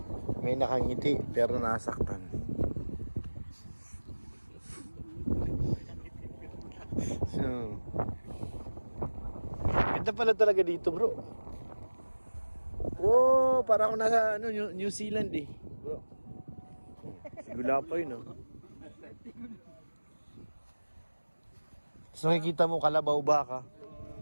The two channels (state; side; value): inverted; both; correlation -1.00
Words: May nakangiti pero nasaktan. So, ganda pala talaga dito, bro. Oh, para ako nasa New Zealand eh, bro. Sigula pa yun, oh. So, nakikita mo kalabaw baka.